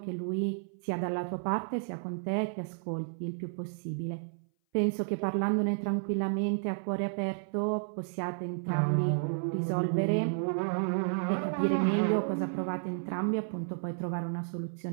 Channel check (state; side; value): silent; left; 57 dB below the other